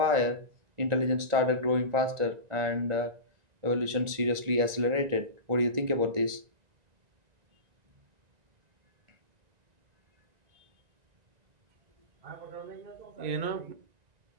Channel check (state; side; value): late; left; 1.9 ms